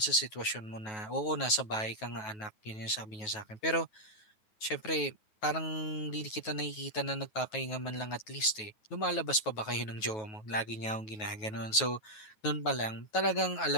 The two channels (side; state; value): right; late; 9.3 ms